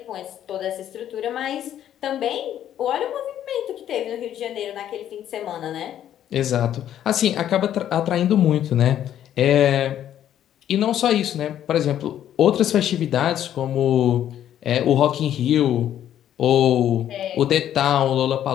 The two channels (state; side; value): quieter; right; 10.9 dB